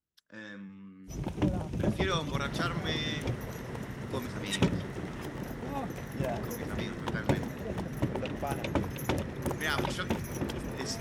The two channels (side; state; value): both; identical; correlation 1.00